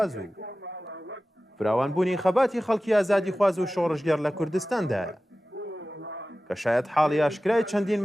و فراوانبوونی خەباتی خەڵکی ئازادی خواز و شۆڕژگەر لە کوردستاندایە کە شاید حاڵی ئاشکرای چەندین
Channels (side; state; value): both; normal; correlation 0.96